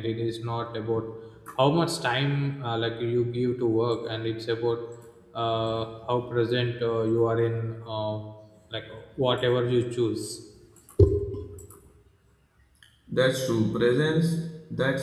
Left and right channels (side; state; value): both; identical; correlation 1.00